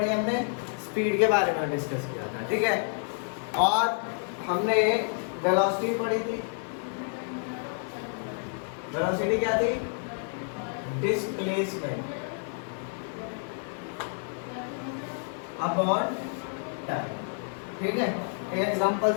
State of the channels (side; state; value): right; silent; 58 dB below the other